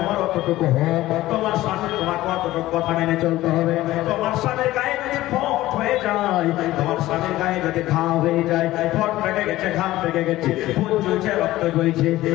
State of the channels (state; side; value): quieter; right; 16.2 dB